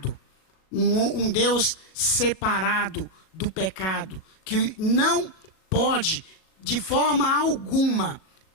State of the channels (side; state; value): right; late; 37 ms